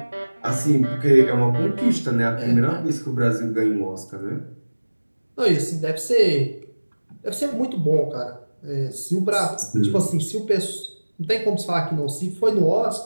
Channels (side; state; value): both; inverted; correlation -1.00